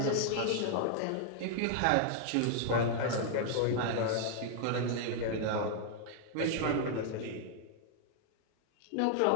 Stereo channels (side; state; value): both; different; correlation 0.00